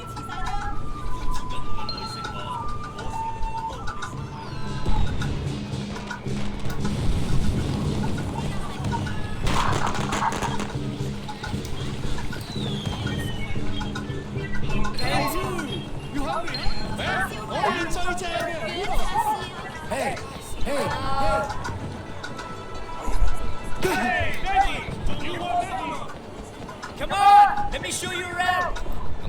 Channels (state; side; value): identical; both; correlation 1.00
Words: Come on! Let me show you around!